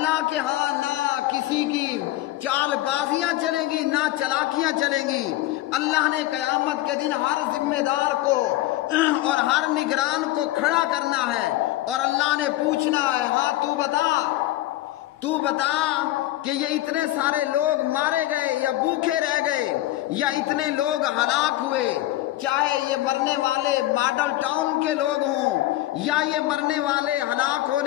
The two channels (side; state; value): right; quieter; 15.9 dB